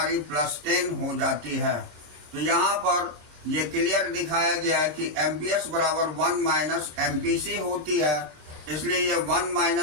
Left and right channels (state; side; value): late; left; 26 ms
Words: +10 हो जाती है। तो यहाँ पर ये क्लियर दिखाया गया है कि MPS बराबर 1 - MPC होती है, इसलिए ये 1